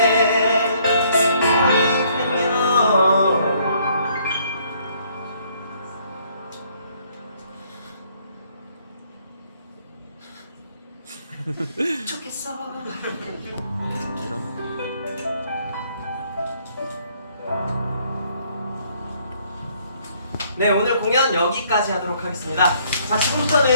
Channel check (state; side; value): inverted; both; correlation -0.65